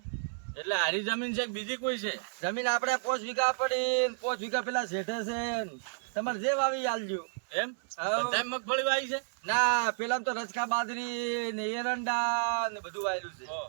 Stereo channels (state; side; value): silent; left; 57 dB below the other